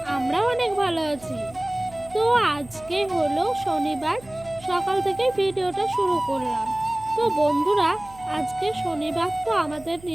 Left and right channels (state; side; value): noise; right; hum, 22 dB below the sound